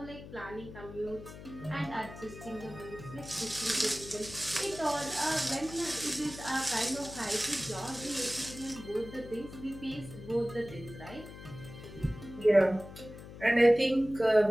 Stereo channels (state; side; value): noise; left; hum, 14 dB below the sound